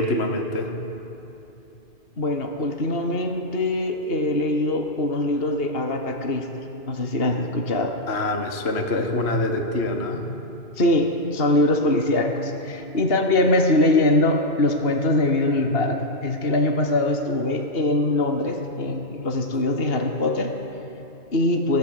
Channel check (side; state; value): right; late; 2.8 ms